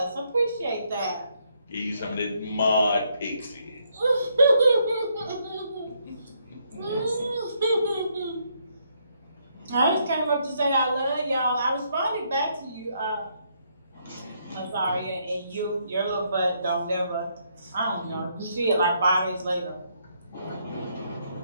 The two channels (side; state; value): both; inverted; correlation -0.74